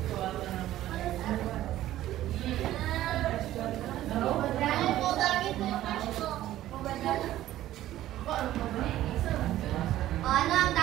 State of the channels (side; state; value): left; quieter; 13.9 dB